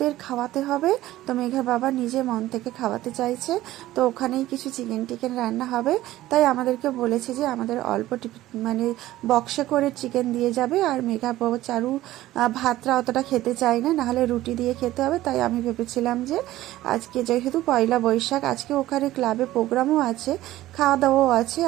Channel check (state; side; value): quieter; left; 15.5 dB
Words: খাওয়াতে হবে, তো মেঘার বাবা নিজে মন থেকে খাওয়াতে চাইছে। তো ওখানেই কিছু চিকেন রান্না হবে। তাই আমাদেরকে বলেছে যে আমাদের অল্প বক্সে করে চিকেন দিয়ে যাবে। আর মেঘা বাবা চারু ভাতটা অতটা খেতে চায় না, নাহলে রুটি দিয়ে খেতে হবে। তাই আমি ভেবেছিলাম যে আজকে যেহেতু পয়লা বৈশাখ, আজকে ওখানে ক্লাবে প্রোগ্রামও আছে, খাওয়া দাওয়াও আছে,